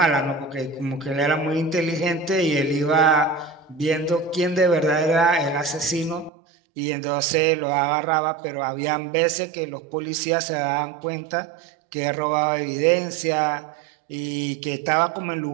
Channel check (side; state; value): left; drops out; at 6.3 s